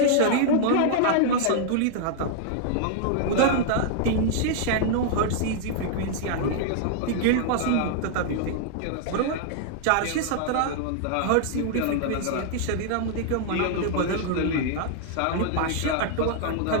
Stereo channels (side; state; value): both; different; correlation -0.01